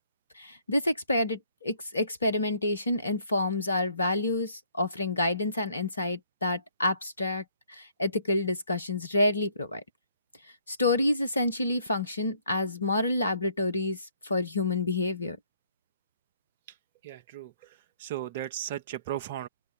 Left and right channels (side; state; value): both; inverted; correlation -0.64